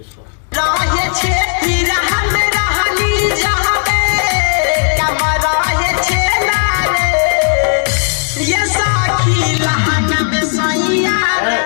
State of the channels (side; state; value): right; silent; digital silence